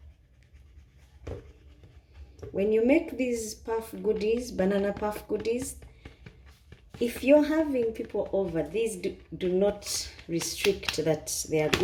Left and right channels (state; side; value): identical; both; correlation 1.00